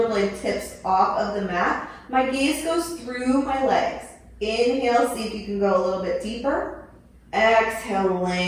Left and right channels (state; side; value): identical; both; correlation 1.00